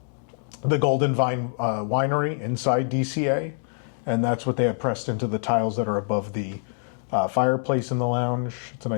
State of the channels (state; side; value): silent; right; 62 dB below the other